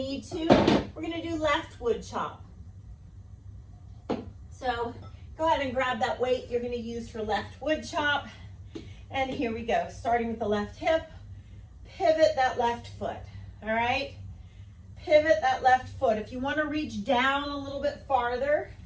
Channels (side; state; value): both; identical; correlation 1.00